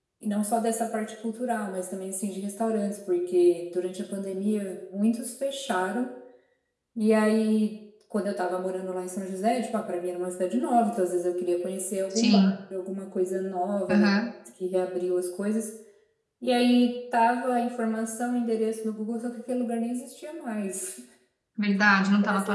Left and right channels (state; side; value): identical; both; correlation 1.00